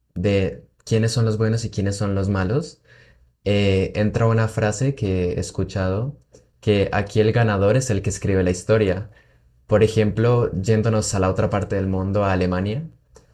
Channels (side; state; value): both; identical; correlation 1.00